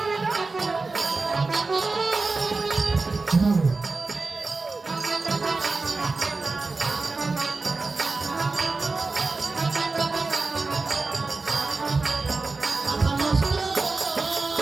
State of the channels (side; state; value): left; quieter; 3.8 dB